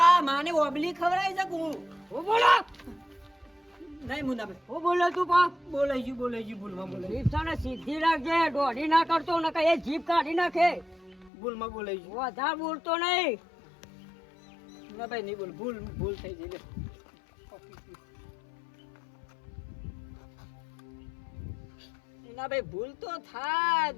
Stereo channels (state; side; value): drops out; right; at 11.3 s